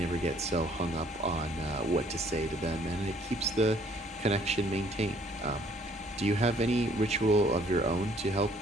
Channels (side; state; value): both; normal; correlation 0.61